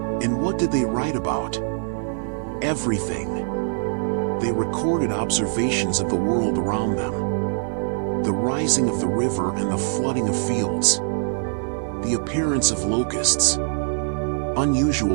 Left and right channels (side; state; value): left; silent; 63 dB below the other